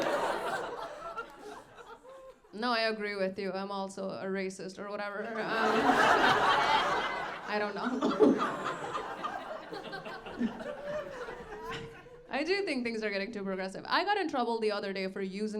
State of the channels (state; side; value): identical; both; correlation 1.00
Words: No, I agree with you. I'm also a racist or whatever. I don't know. I do think things are getting too progressive. I got in trouble the other day for